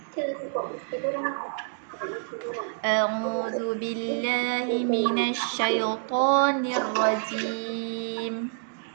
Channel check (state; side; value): silent; left; digital silence